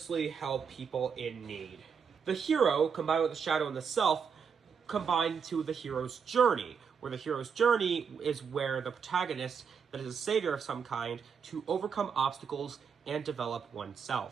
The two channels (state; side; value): quieter; left; 6.5 dB